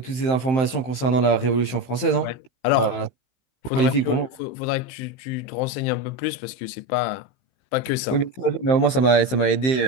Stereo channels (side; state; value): right; late; 15 ms